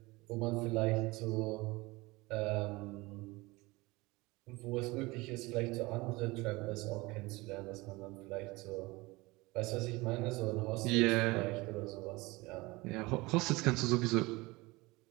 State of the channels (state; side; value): quieter; left; 22.6 dB